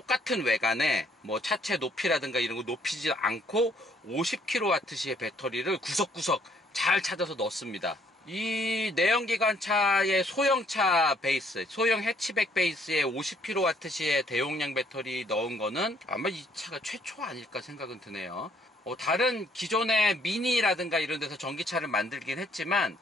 외관에 뭐 차체 높이라든가 이런 거 높이지 않고 50kWh의 배터리를 구석구석 잘 찾아서 넣습니다. 이 내연기관차의 소형차 베이스, 소형 해치백 베이스에 50kWh의 대용량 배터리 넣은 거는 아마 이 차가 최초 아닐까 생각은 드네요. 다른 기존의 미니라든가 이런 데서 전기차를 만들긴 했지만,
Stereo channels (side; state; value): both; normal; correlation 0.66